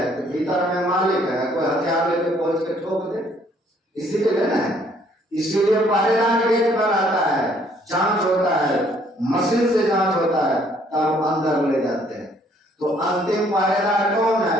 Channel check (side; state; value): both; normal; correlation 0.63